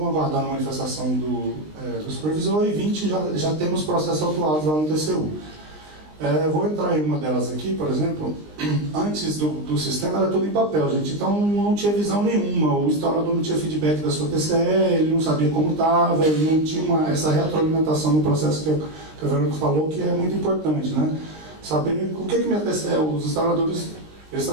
aguardando a manifestação do supervisor, e 20 já temos processos autuados lá no TCU. Vou entrar em uma delas aqui, por exemplo. Antes do sistema era tudo em papel, gente, então não tinha visão nenhuma. O instalador não tinha feedback da sua TCE, ele não sabia como estava, ele não tinha essa retroalimentação no processo que a Verônica falou, que é muito importante, né? Saber o que minha TCE, os instaladores, eles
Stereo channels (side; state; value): left; late; 20 ms